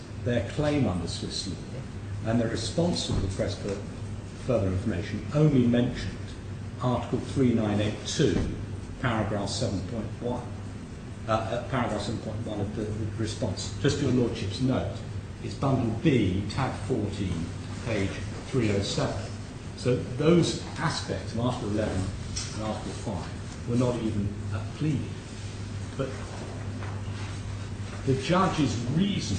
their claim under Swiss law, and their response to the request for further information only mentioned Article 3982, paragraph 7.1. Paragraph 7.1 of the response. Just for your Lordship's note, it's bundle B, tab 14, page 307. So those aspects of Article 11 and Article 5 were not even pleaded. But the judge's reasoning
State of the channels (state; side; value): identical; both; correlation 1.00